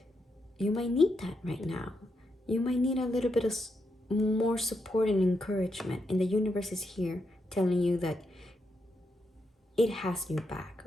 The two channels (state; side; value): normal; both; correlation 0.82